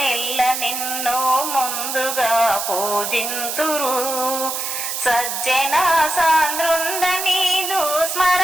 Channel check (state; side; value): noise; right; hiss, 3 dB below the sound